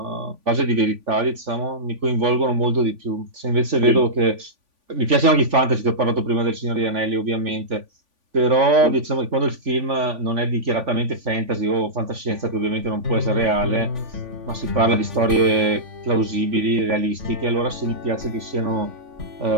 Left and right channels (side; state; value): left; late; 3.5 ms